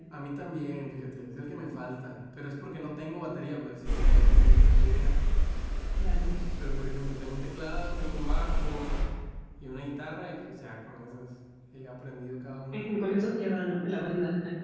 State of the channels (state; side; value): identical; both; correlation 1.00